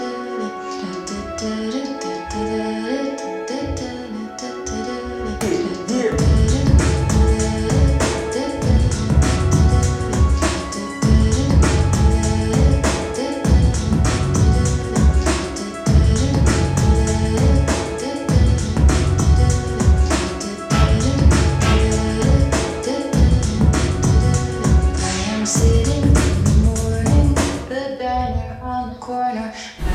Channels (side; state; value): both; identical; correlation 1.00